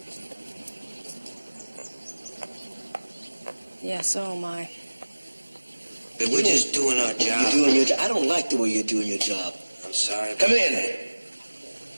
Yeah, so am I. We're just doing our job. You're doing your job. I don't like the way you're doing your job. I'm sorry. Come in.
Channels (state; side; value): inverted; both; correlation -1.00